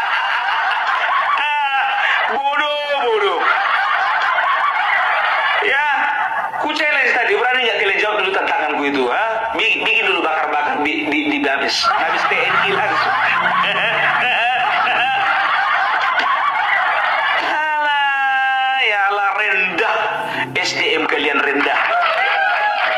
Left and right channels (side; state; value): both; identical; correlation 1.00